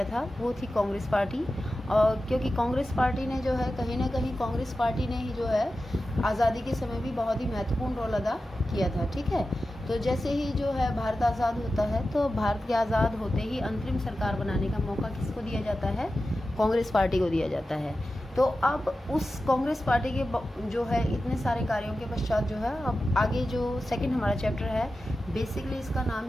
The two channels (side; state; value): both; normal; correlation 0.93